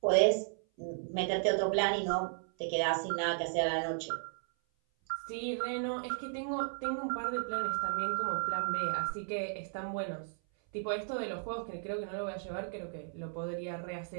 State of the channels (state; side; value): silent; left; 55 dB below the other